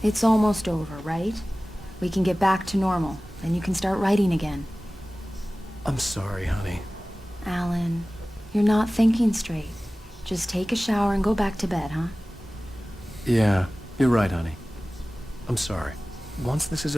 It's almost over, right? We can get back to normal, and you can start writing again. I'm sorry, honey. Alan, you're not thinking straight. Just take a shower and go back to bed, huh? Yeah, you're right, honey. I'm sorry. Once this is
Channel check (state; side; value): normal; both; correlation 0.97